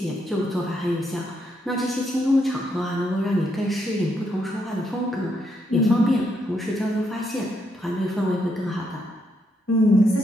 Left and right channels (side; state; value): both; normal; correlation 0.77